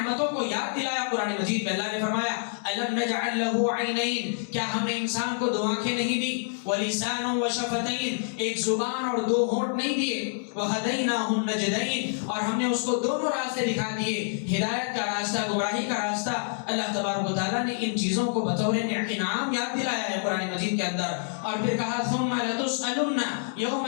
کو یاد دلایا قرآن مجید میں۔ اللہ نے فرمایا الم نجعل له عینین، کیا ہم نے انسان کو دو آنکھیں نہیں دی، ولسان وشفتین، ایک زبان اور دو ہونٹ نہیں دیے، وہدیناہ النجدین، اور ہم نے اس کو دونوں راستے دکھا دیے، ہدایت کا راستہ، گمراہی کا راستہ۔ اللہ تبارک و تعالیٰ نے ان چیزوں کو بطور انعام یاد دلایا ہے قرآن مجید کے اندر، اور پھر کہا ثم لتسألن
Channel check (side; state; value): right; silent; digital silence